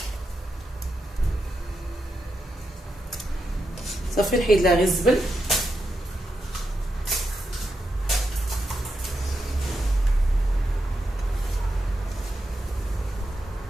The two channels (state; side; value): normal; both; correlation 0.85